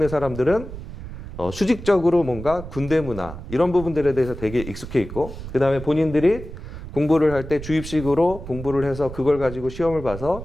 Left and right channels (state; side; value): noise; right; rumble, 11 dB below the sound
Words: 사람들은 수직적으로 뭔가 군대 문화 이런 부분들에 대해서 되게 익숙해 있고, 그 다음에 본인들이 공부를 할 때 주입식으로 공부를 해서 그걸 가지고 시험을